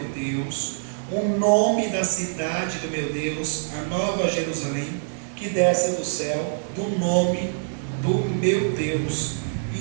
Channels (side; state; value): left; silent; 62 dB below the other